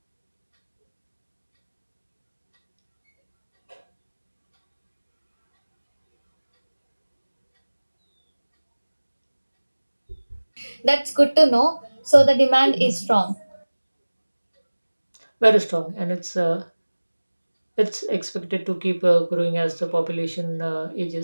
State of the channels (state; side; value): inverted; both; correlation -1.00